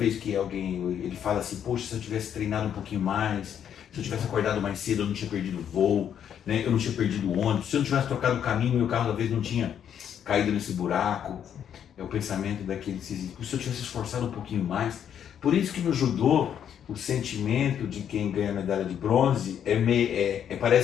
que alguém ele fala assim, poxa, se eu tivesse treinado um pouquinho mais, se eu tivesse acordado mais cedo, eu não tinha perdido o voo, né? Eu não tinha perdido o ônibus, se eu não tivesse trocado o caminho, meu carro talvez não tinha caído nesse buraco. É o pensamento daquele que se eu tivesse esforçado um pouquinho mais. Por isso que no judô, o sentimento de quem ganha a medalha de bronze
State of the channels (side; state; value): right; quieter; 9.0 dB